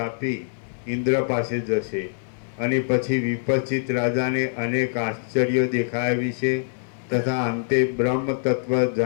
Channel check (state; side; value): silent; right; digital silence